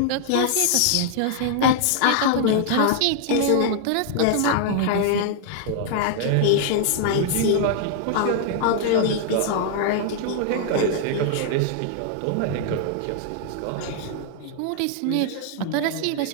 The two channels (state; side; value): different; both; correlation 0.00